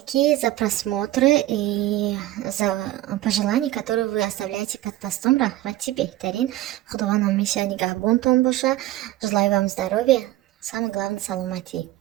за просмотры и за пожелания, которые вы оставляете под постом. Рахмати бехтарин. Худуванам мишани гахбунтон боша. Желаю вам здоровья. Самое главное, саламати.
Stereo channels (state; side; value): quieter; left; 15.5 dB